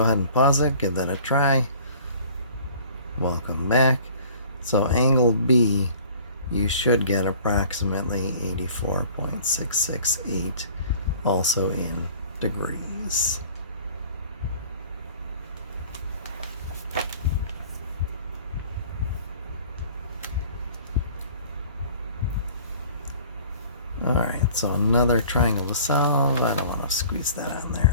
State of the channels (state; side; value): inverted; both; correlation -0.49